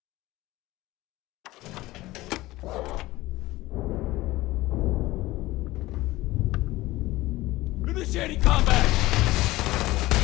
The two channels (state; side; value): quieter; right; 18.3 dB